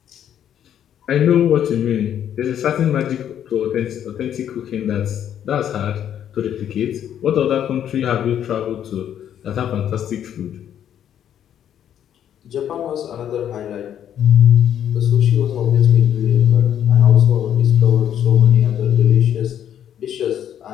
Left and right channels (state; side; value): quieter; right; 9.9 dB